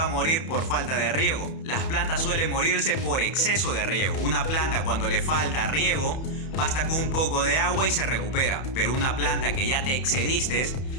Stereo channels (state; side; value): late; right; 31 ms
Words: a morir por falta de riego. Las plantas suelen morirse por exceso de riego. Una planta cuando le falta riego, basta con un poco de agua y se recupera. Pero una planta que ya te excediste,